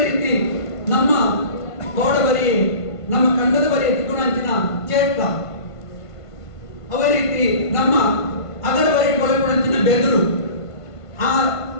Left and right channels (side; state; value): right; late; 1.5 ms